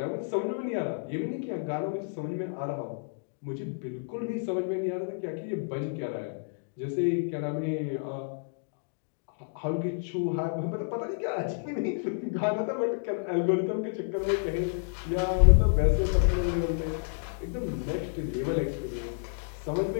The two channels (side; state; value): right; silent; digital silence